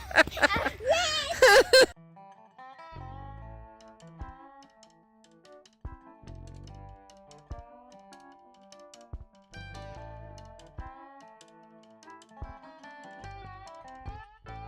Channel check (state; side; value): identical; both; correlation 1.00